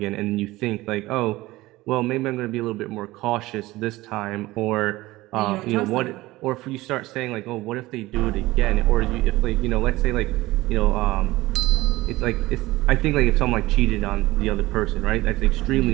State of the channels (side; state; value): left; quieter; 18.7 dB